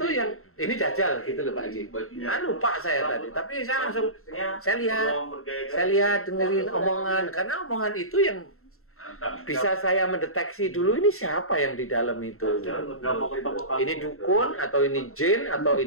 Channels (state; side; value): late; right; 0.63 ms